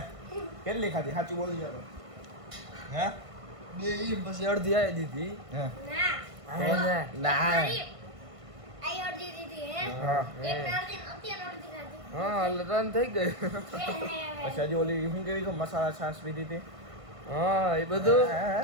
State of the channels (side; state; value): left; late; 1.5 ms